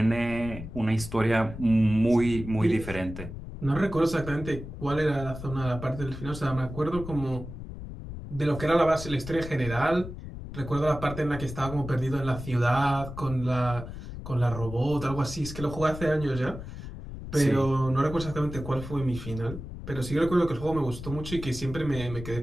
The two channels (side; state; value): left; noise; rumble, 10 dB below the sound